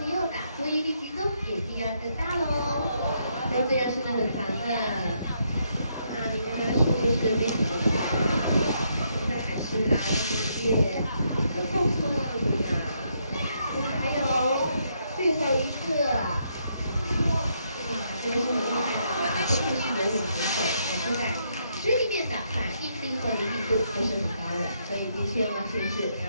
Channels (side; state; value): both; inverted; correlation -0.75